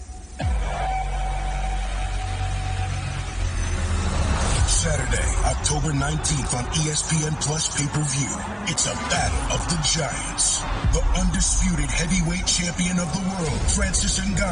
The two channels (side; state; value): both; identical; correlation 1.00